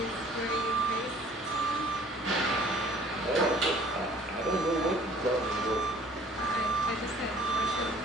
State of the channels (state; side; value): normal; both; correlation 0.53